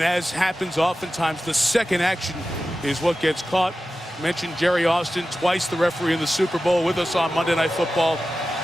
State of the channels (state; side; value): normal; both; correlation 0.94